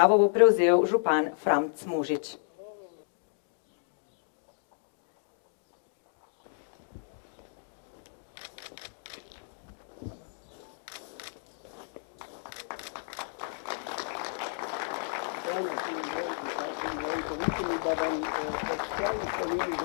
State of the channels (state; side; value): silent; right; digital silence